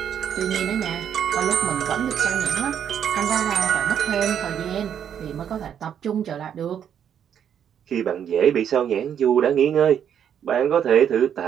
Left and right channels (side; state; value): left; quieter; 8.8 dB